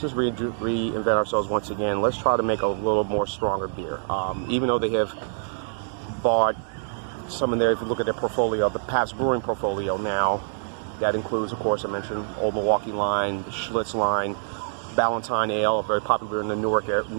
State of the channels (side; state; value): left; silent; 62 dB below the other